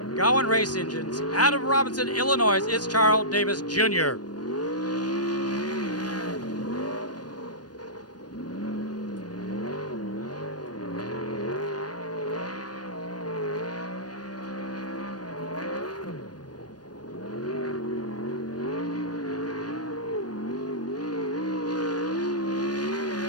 Gowan Race Engines. Out of Robinson, Illinois, it's Charles Davis Jr.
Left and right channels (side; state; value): right; late; 0.69 ms